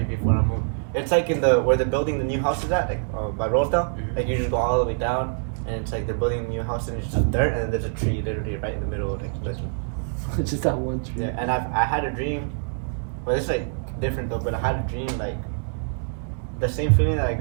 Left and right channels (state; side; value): silent; left; digital silence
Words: tree before I move. It's like in where they're building the new house is at, like by Rosedale. Mhm. Like you just go all the way down, and it's like they're building a new house, and it's just dirt, and then there's a tree literally right in the middle of like this. Just that one tree. Yeah, and I had a dream, but it's like different though. But I had a dream like the same feeling that I